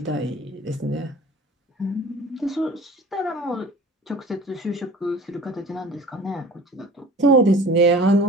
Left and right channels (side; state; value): both; normal; correlation 0.43